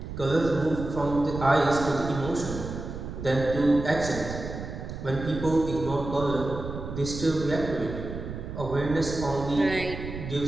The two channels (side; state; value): right; noise; rumble, 8 dB below the sound